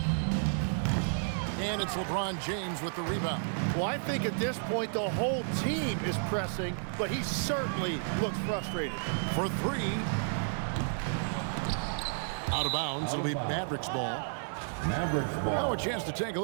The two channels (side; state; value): left; silent; 56 dB below the other